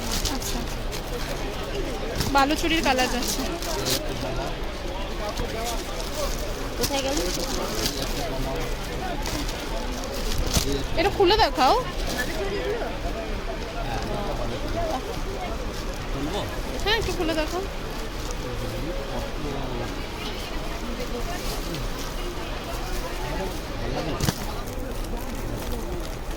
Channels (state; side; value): identical; both; correlation 1.00